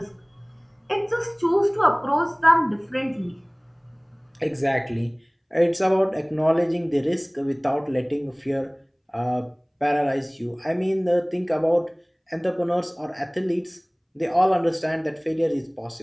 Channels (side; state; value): both; identical; correlation 1.00